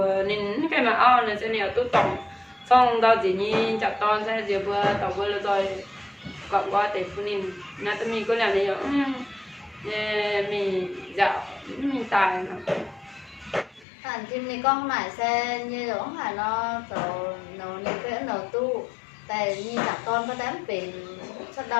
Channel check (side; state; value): right; drops out; at 13.9 s